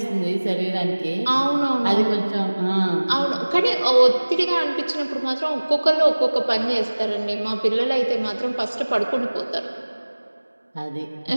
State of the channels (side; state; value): both; inverted; correlation -1.00